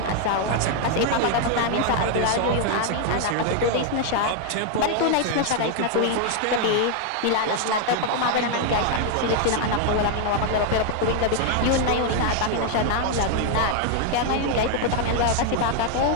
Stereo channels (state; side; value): different; both; correlation 0.00